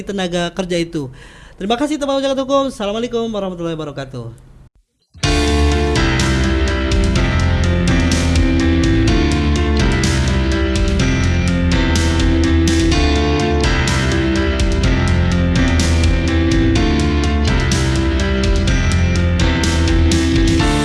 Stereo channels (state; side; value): identical; both; correlation 1.00